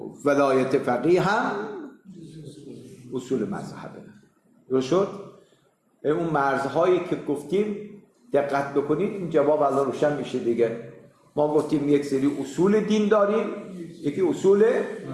ولایت فقیه هم اصول مذهبه. درست شد؟ اون مرزهایی که گفتیم دقت بکنید این جواب الله روشن میشه دیگه. ما گفتیم یک سری اصول دین داریم، یکی اصول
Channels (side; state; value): both; identical; correlation 1.00